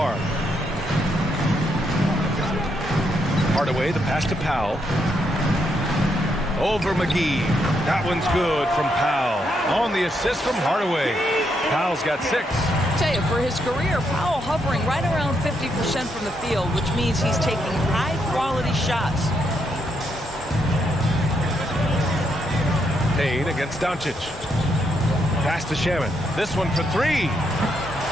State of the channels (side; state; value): both; normal; correlation 0.78